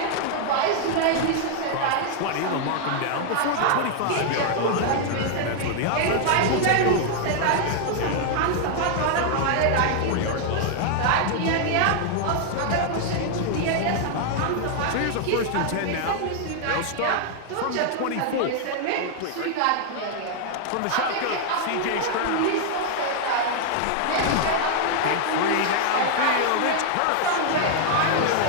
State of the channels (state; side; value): different; both; correlation 0.00